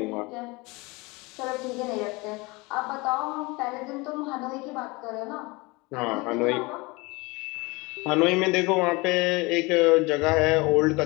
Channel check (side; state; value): right; quieter; 24.8 dB